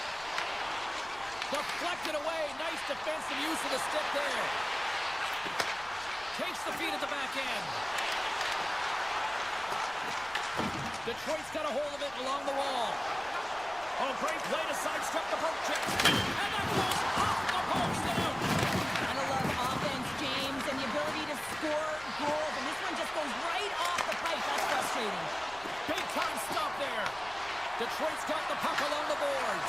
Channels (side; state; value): left; noise; rumble, 22 dB below the sound